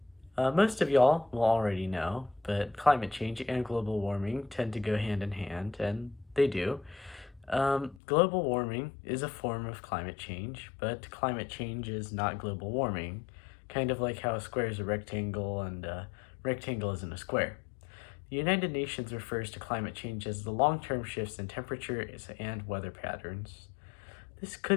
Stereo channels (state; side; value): drops out; right; at 8.0 s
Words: Most of y'all will already know, but climate change and global warming tend to go hand in hand, and they do. Global warming is a form of climate change, but climate change is not global warming, kind of like how a square is a rectangle and a rectangle isn't a square. The United Nations refers to climate change as the long-term shifts in temperatures and weather patterns. This